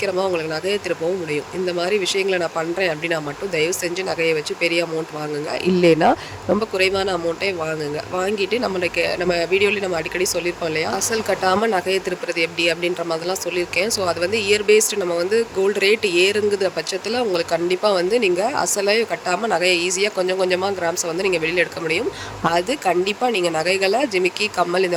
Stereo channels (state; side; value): identical; both; correlation 1.00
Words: உங்களுக்கு நகையை திருப்பவும் முடியும். இந்த மாதிரி விஷயங்களை நான் பண்ணுறேன் அப்படின்னா மட்டும் தயவு செஞ்சு நகையை வச்சு பெரிய அமௌண்ட் வாங்குங்க. இல்லைன்னா ரொம்ப குறைவான அமௌண்ட்டே வாங்குங்க. வாங்கிட்டு நம்ம வீடியோலேயே நம்ம அடிக்கடி சொல்லியிருப்போம் இல்லையா, அசல் கட்டாமல் நகையை திருப்புறது எப்படி அப்படின்ற மாதிரிலாம் சொல்லியிருக்கேன். ஸோ அது வந்து இயர் பேஸ்டு நம்ம வந்து கோல்டு ரேட் ஏறுங்குற பட்சத்தில் உங்களுக்கு கண்டிப்பாக வந்து நீங்கள் அசலை கட்டாமல் நகையை ஈஸியாக கொஞ்சம் கொஞ்சமாக கிராம்ஸை வந்து நீங்கள் வெளியில் எடுக்க முடியும். அது கண்டிப்பாக நீங்கள் நகைகளை ஜிமிக்கி கம்மல்